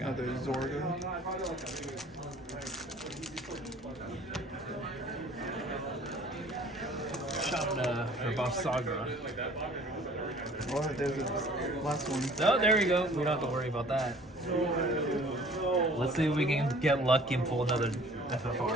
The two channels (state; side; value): normal; both; correlation 0.51